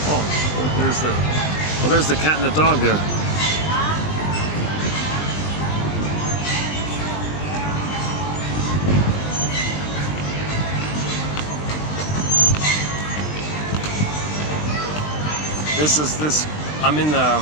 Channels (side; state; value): right; late; 20 ms